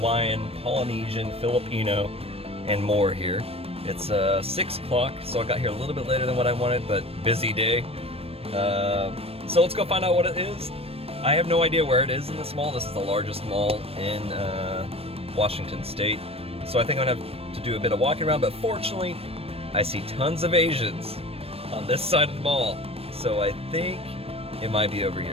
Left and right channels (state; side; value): late; left; 0.28 ms